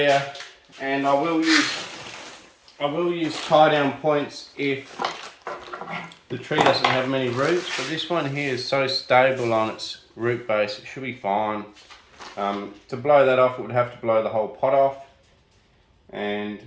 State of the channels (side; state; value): both; identical; correlation 1.00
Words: and I will use tie down points if the tree doesn't have many roots, but this one here is so stable on its root base, it should be fine. To blow that off, it would have to blow the whole pot off. And